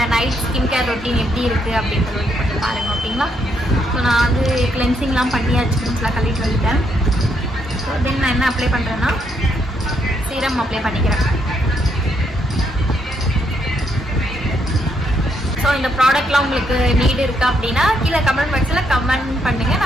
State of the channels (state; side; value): normal; both; correlation 0.75